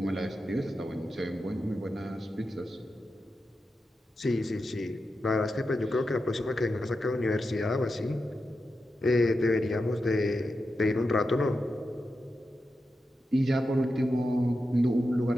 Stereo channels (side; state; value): both; normal; correlation 0.89